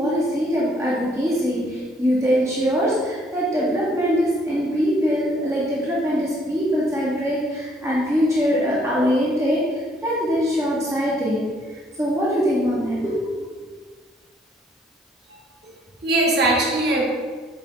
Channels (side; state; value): both; normal; correlation 0.65